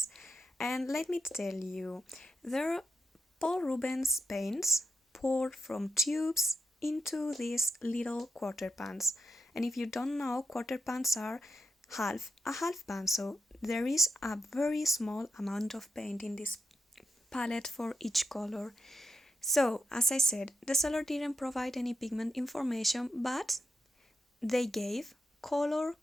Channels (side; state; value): both; normal; correlation 0.86